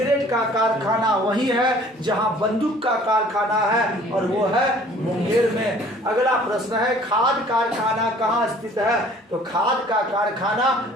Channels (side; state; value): both; normal; correlation 0.53